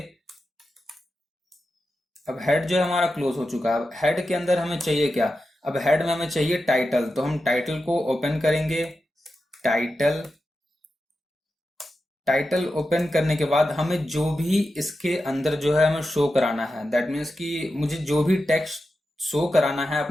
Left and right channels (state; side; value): normal; both; correlation 0.91